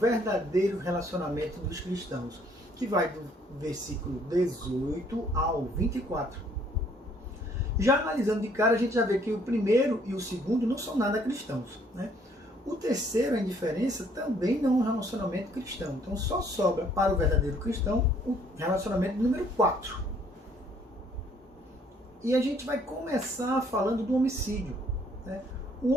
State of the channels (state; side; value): normal; both; correlation 0.63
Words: relacionamento dos cristãos, que vai do versículo 18 ao 24. Já analisando de cara, a gente já vê que o primeiro e o segundo não são nada cristãos, né? O terceiro, a indiferença, também não é um relacionamento cristão. Então só sobra para o verdadeiro cristão o relacionamento número 4. E a gente vai começar falando do homicídio, né? O